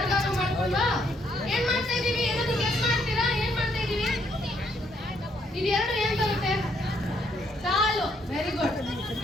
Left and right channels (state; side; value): normal; both; correlation 0.71